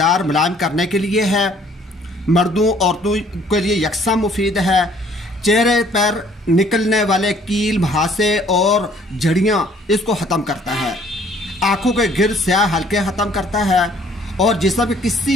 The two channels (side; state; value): both; normal; correlation 0.59